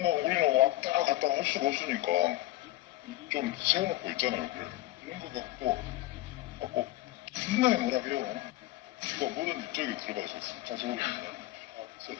우리는 왔다 갔다 할 수가 없으니까 좀 세워놓고 있잖아요. 그래. 이런 거 갖고 존나 뭐라고요. 그러니까 뭐든 저기 들어가서 차 세우거든요.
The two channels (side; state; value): right; quieter; 16.8 dB